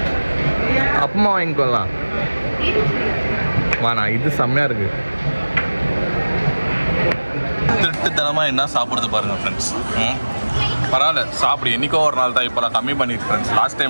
அப்பமா வாங்கிக்கொள்ளலாம். வாண்ணா, இது செம்மையாக இருக்கு. திருட்டுத்தனமாக என்ன சாப்பிடுறது பாருங்க ஃப்ரெண்ட்ஸ். பரவாயில்ல சாப்பிடு, என்றைக்கோ ஒரு நாள் தான். இப்போலாம் கம்மி பண்ணிட்டு ஃப்ரெண்ட்ஸ். லாஸ்ட்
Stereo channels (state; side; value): inverted; both; correlation -1.00